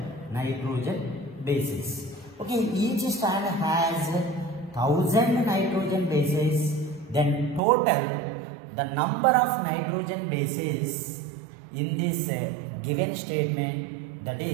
bases. Okay, each strand has 1000 nitrogen bases. Then total the number of nitrogen bases in this given statement, that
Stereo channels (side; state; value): left; drops out; at 7.6 s